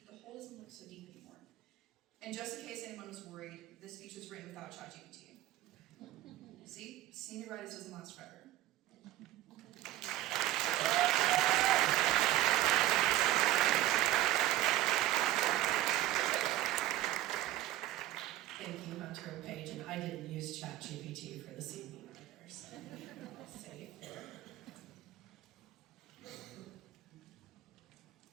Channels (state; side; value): quieter; left; 14.9 dB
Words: the hole doesn't look so deep anymore. And just in case anyone was worried, this speech was written without ChatGPT. See, senioritis doesn't last forever. Thank you, Hunter and Paige, and I didn't use ChatGPT for this evening either, so safe there.